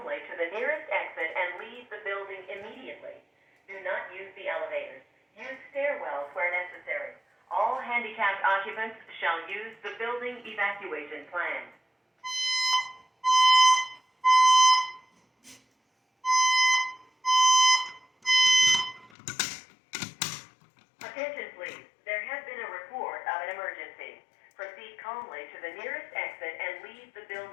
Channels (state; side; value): drops out; right; at 19.1 s